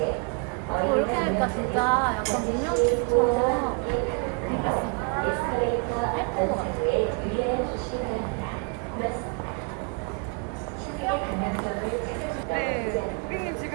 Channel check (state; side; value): quieter; left; 33.5 dB